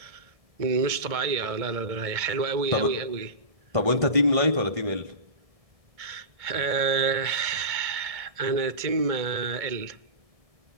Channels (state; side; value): late; left; 1.7 ms